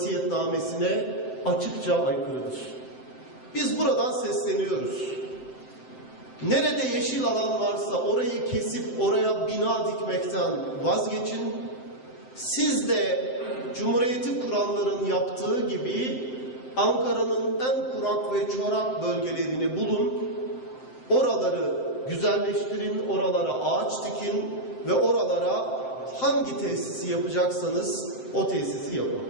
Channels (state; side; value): late; right; 7.7 ms